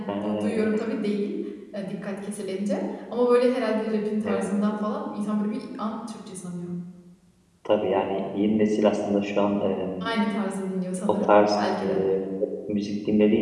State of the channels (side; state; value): both; identical; correlation 1.00